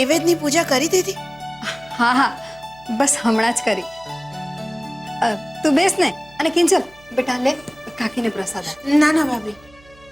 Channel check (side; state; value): right; noise; hum, 26 dB below the sound